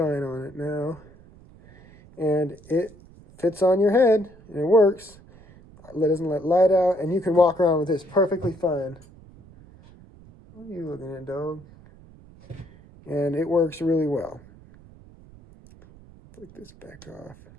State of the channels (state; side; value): noise; right; rumble, 23 dB below the sound